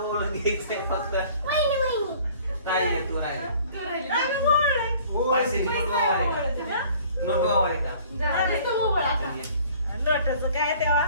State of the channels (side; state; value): both; inverted; correlation -0.52